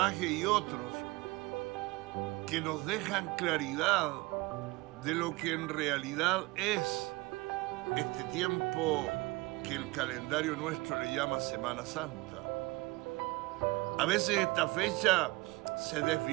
y otros que nos dejan claridad de lo que en realidad es este tiempo que el calendario nuestro le llama Semana Santa. A veces esta fecha se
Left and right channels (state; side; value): quieter; left; 22.8 dB